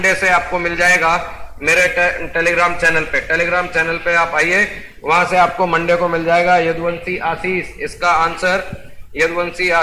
से आपको मिल जाएगा मेरे टेलीग्राम चैनल पे। टेलीग्राम चैनल पे आप आइए, वहां से आपको मंडे को मिल जाएगा। यदुवंशी आशीष इसका आंसर, यदुवंशी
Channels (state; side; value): identical; both; correlation 1.00